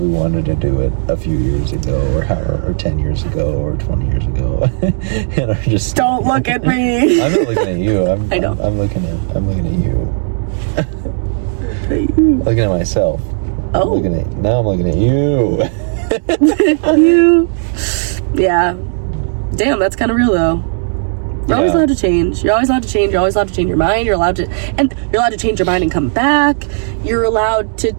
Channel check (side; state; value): left; silent; digital silence